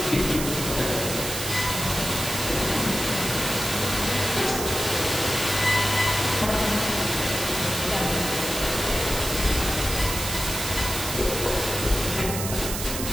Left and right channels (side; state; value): right; noise; hiss, 5 dB below the sound